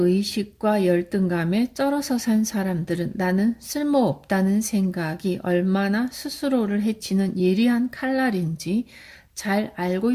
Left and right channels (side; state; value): both; identical; correlation 1.00